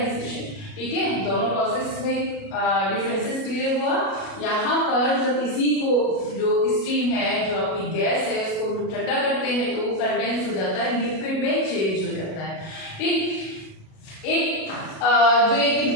ठीक है, दोनों प्रोसेस में डिफरेंसेस क्लियर हुआ। यहाँ पर जब इसी को जो स्टीम है, जो आपकी गैस है, उसको ठंडा करते हैं तो वो कंडेंस हो जाता है, लिक्विड में चेंज हो जाता है। ठीक, एक जो एक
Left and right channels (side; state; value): right; late; 37 ms